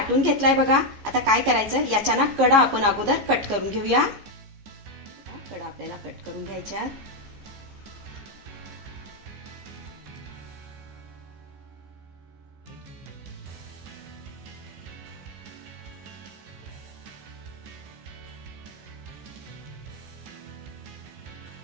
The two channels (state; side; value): late; left; 15 ms